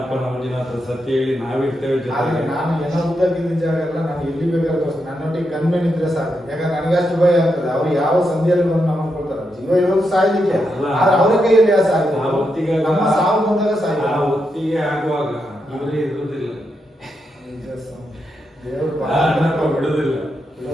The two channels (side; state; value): both; normal; correlation 0.84